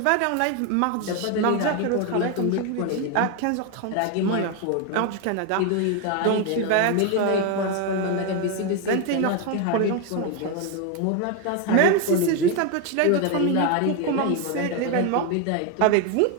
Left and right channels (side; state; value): both; different; correlation 0.01